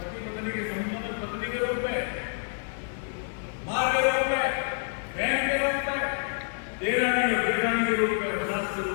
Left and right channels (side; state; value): right; silent; 59 dB below the other